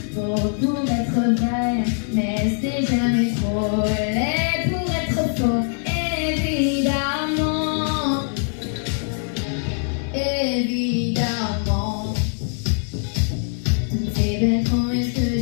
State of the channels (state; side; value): silent; right; 61 dB below the other